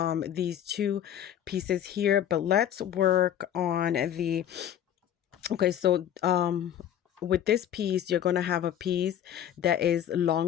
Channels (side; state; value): right; quieter; 10.3 dB